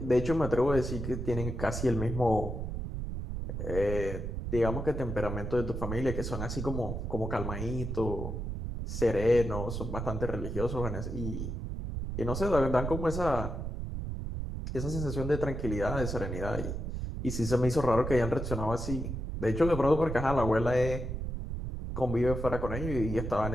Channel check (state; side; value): noise; right; rumble, 4 dB below the sound